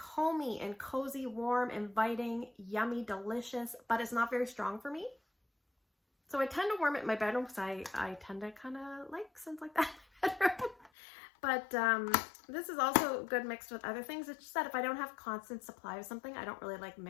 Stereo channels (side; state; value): right; drops out; at 10.9 s